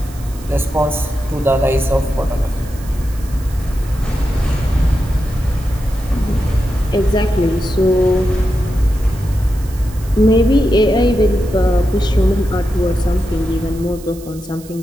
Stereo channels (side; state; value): right; noise; hiss, 21 dB below the sound